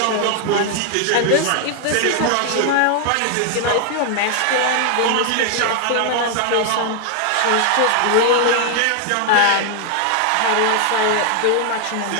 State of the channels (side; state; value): both; different; correlation 0.00